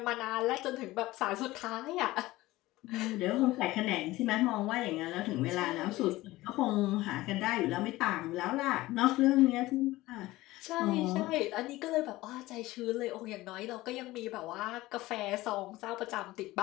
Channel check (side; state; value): right; quieter; 18.2 dB